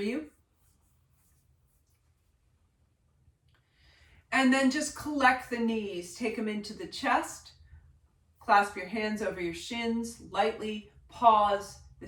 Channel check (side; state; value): both; identical; correlation 1.00